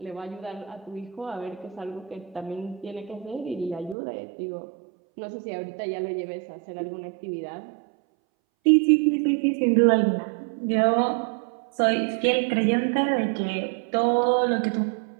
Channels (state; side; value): drops out; left; at 4.0 s